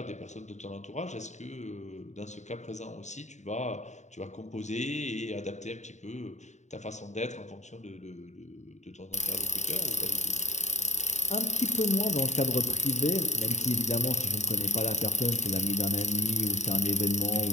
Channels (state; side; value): late; right; 0.34 ms